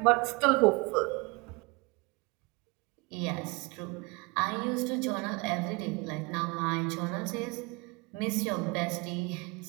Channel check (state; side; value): quieter; left; 27.5 dB